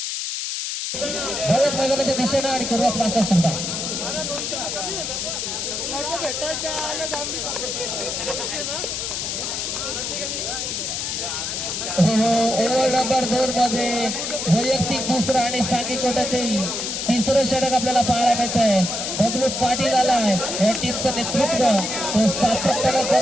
भारत मैदानाच्या दिशेनं आणि करूयात मास्टर सुद्धा. ओव्हर नंबर 2 मध्ये वैयक्तिक दुसरा आणि सांघिक कोट्यातील तिसरं षटक आपल्याला पाहायला मिळतंय. बबलू पाटील आलाय, या टीमचं नेतृत्व तो सातत्यानं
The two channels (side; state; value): left; noise; hiss, 3 dB below the sound